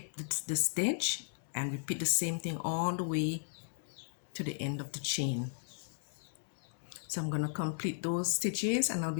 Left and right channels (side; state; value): right; silent; digital silence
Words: the stitch, and repeat the same thing all the way to the end of the chain. So I'm going to complete those stitches and I'll